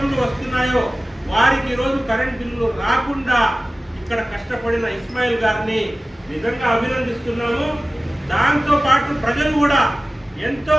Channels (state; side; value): normal; both; correlation 0.96